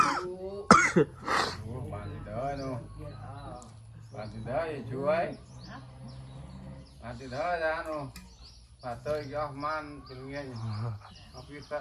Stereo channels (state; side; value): identical; both; correlation 1.00